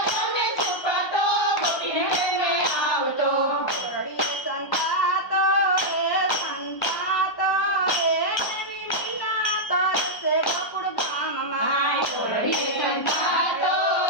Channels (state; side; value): late; right; 1.2 ms